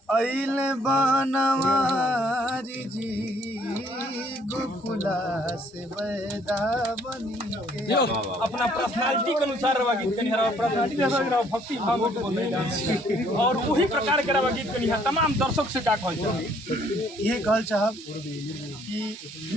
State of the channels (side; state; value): both; normal; correlation 0.63